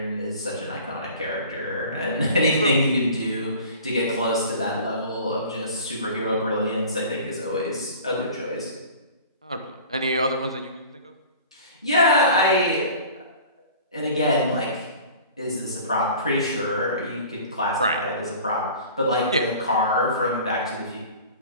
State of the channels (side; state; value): both; inverted; correlation -0.43